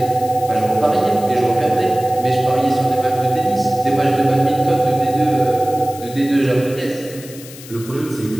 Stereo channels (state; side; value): noise; left; hiss, 17 dB below the sound